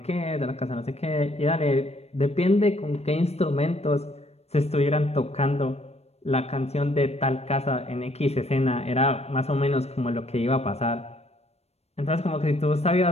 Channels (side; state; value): right; late; 0.31 ms